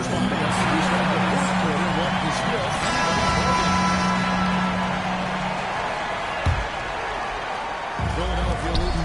behind us, we start the fourth quarter. What is still Philadelphia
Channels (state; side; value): identical; both; correlation 1.00